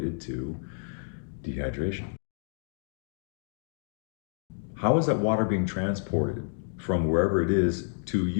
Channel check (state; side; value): silent; right; digital silence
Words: to dehydration. How is that water being transported from wherever it is to